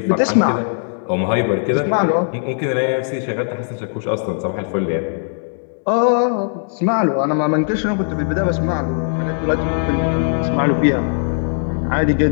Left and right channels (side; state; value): right; silent; digital silence